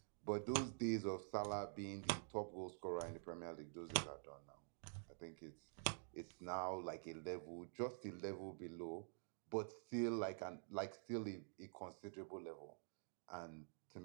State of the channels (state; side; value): silent; left; digital silence